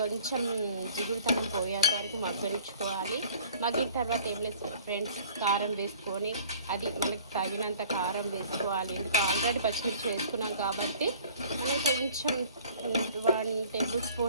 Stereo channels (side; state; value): both; inverted; correlation -0.50